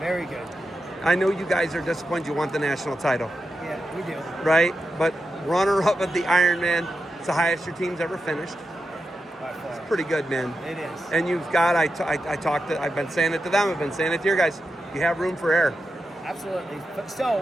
good. I know you guys are disappointed you want the national title. Yeah, we do. Right? But runner-up at the Ironman, it's the highest your team's ever finished. By far. It's pretty good, man. It is. And you've got, I've been saying it to them, I've been saying it to your guys, you have room for error. Absolutely.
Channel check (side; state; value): both; normal; correlation 0.89